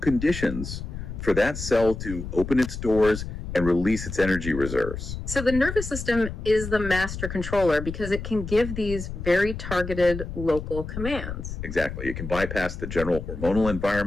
for that cell to open its doors and release its energy reserves. So the nervous system is the master controller because it can give these very targeted local commands. Exactly. It can bypass the general hormonal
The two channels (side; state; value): left; noise; rumble, 7 dB below the sound